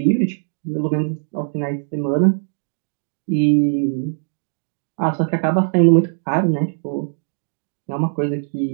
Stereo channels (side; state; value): left; silent; digital silence